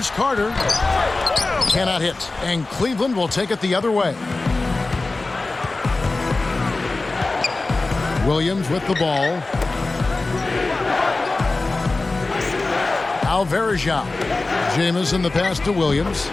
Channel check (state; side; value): quieter; right; 3.3 dB